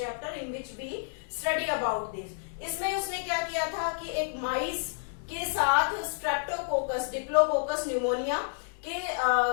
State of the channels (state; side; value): silent; right; digital silence